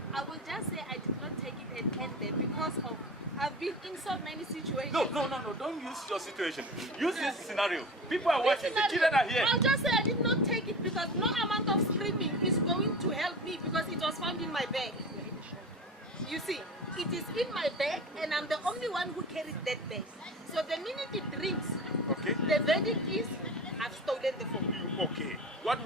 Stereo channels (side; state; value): both; normal; correlation 0.32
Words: I will just say I did not take it and end there because of I've been in so many situations. No. Don't use your situation. Use this scenario. People are watching. The children are here. I'll just say I did not take it because no amount of screaming is going to help me because it was found in my bag. You see, it is in my bag and I'm the only one who carries that bag. So the minute it rings, Okay. the verdict is I've stolen the phone. Okay. What